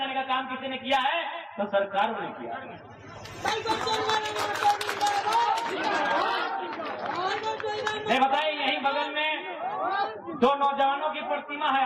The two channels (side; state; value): both; identical; correlation 1.00